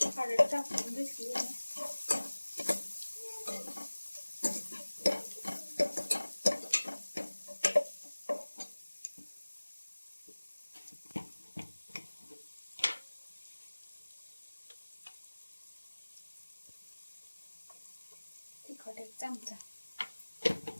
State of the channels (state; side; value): inverted; both; correlation -1.00